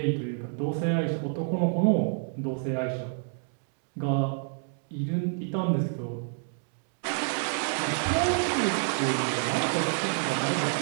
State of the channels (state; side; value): silent; left; 59 dB below the other